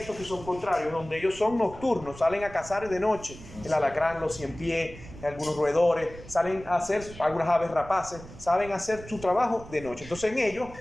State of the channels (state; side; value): noise; right; rumble, 16 dB below the sound